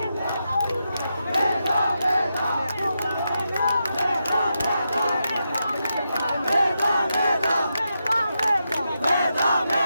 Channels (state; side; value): inverted; both; correlation -0.86